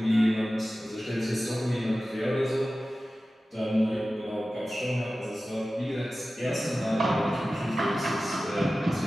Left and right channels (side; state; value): both; normal; correlation 0.95